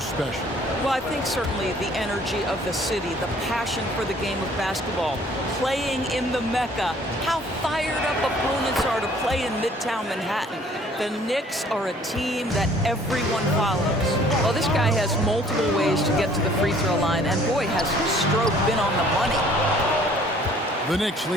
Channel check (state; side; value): normal; both; correlation 0.56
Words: Well, I think certainly the energy of the city, the passion for the game of basketball, playing in the Mecca, how fired up opponents are to play in Midtown Manhattan. The Knicks are a team that everyone follows. Well, this guy has multiple ways to get to the free throw line, and boy, has his stroke been on the money. The Knicks